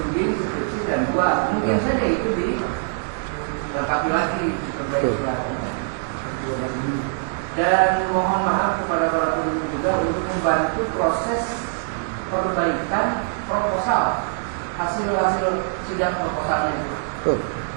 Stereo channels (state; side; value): silent; left; 63 dB below the other